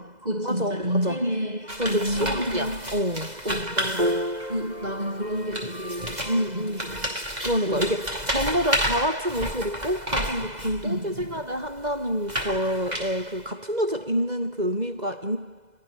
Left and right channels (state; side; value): late; left; 2.0 ms